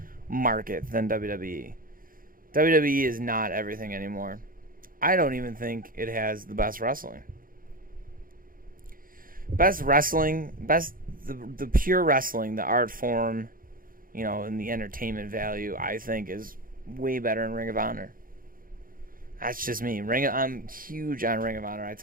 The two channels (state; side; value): late; left; 0.41 ms